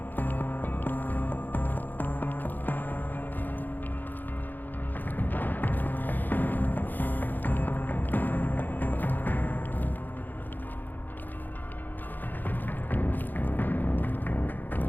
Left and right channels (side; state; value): right; late; 0.087 ms